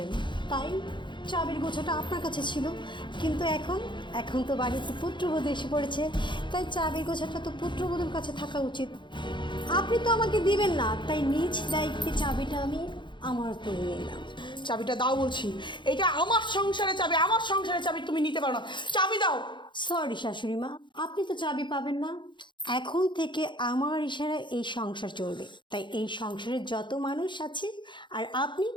তাই চাবির গোছাটা আপনার কাছে ছিল। কিন্তু এখন তো বাড়িতে পুত্রবধূ এসে পড়েছে, তাই চাবির গোছাটা তো পুত্রবধূর কাছে থাকা উচিত। আপনি তো আমাকে দিবেন না, তাই নিজ দায়িত্বে চাবিটা আমি আমার করে নিলাম। চাবিটা দাও বলছি। এটা আমার সংসারের চাবি, আমার সংসারের চাবি তুমি নিতে পারো না। চাবি দাও। সরি শাশুড়ি মা, আপনি তো চাবি পাবেন না। এখন থেকে আমার ইশারায় এই সংসার চলবে, তাই এই সংসারের যত মানুষ আছে আর আপনি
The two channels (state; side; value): late; right; 0.23 ms